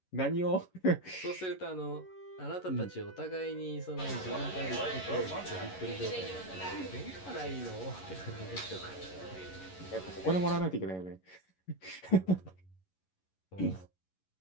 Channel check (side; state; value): right; late; 11 ms